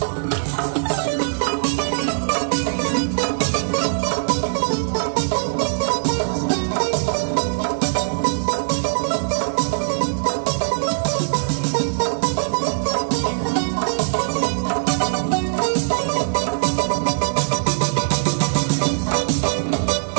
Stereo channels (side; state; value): left; silent; digital silence